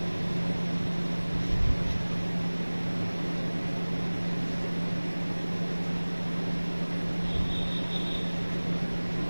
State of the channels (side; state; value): both; inverted; correlation -1.00